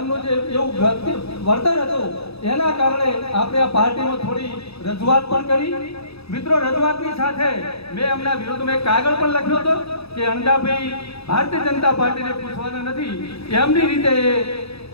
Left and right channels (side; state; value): right; late; 0.78 ms